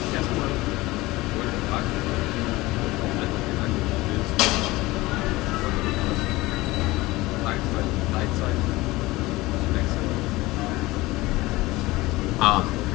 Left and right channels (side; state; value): right; quieter; 20.1 dB